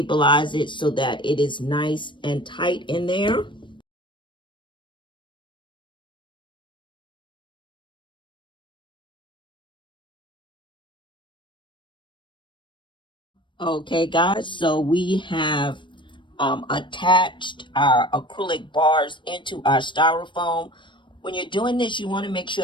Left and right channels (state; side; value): late; right; 0.23 ms